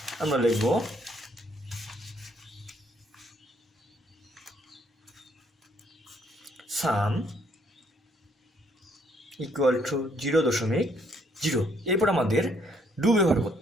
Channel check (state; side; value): normal; both; correlation 0.68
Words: আমরা লিখব সাম ইকুয়াল টু 0.0। এরপর আমাদের ডু ব্যবহার